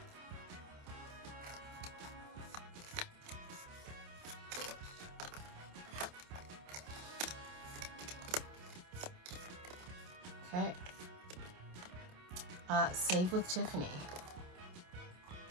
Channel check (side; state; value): left; late; 28 ms